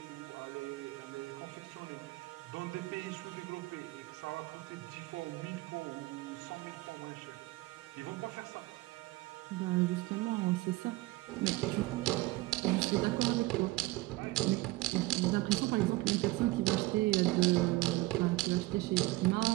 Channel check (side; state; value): left; quieter; 20.3 dB